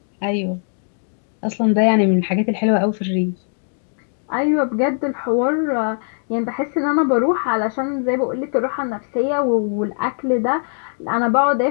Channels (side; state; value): right; silent; 56 dB below the other